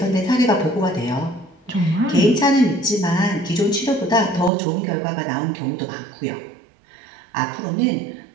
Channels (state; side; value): drops out; left; at 4.5 s